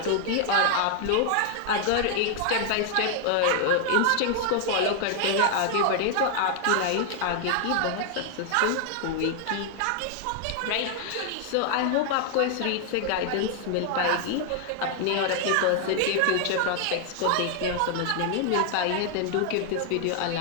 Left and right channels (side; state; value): both; different; correlation 0.00